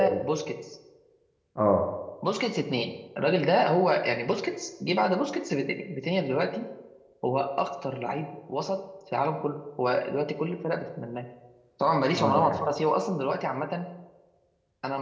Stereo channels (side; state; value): both; identical; correlation 1.00